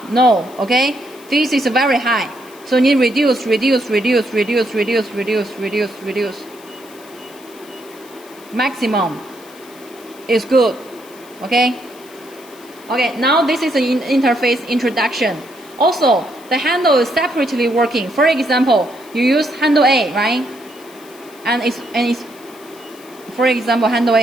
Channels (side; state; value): left; noise; hiss, 23 dB below the sound